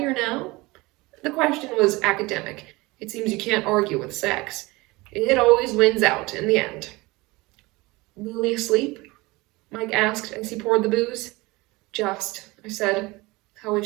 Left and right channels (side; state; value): left; quieter; 22.6 dB